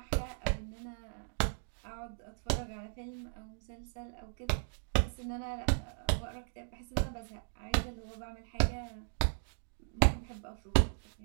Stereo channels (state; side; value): silent; left; digital silence